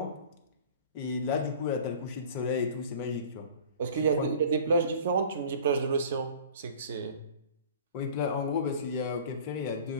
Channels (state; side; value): inverted; both; correlation -0.43